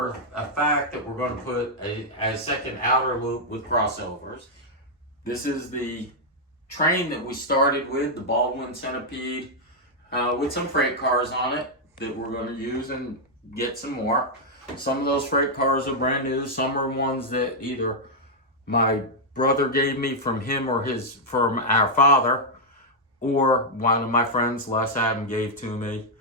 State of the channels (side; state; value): both; normal; correlation -0.04